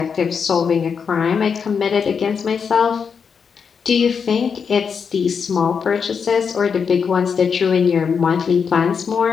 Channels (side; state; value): right; quieter; 6.3 dB